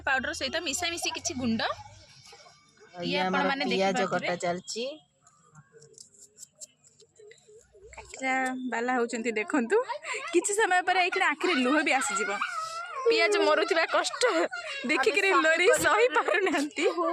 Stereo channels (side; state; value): both; identical; correlation 1.00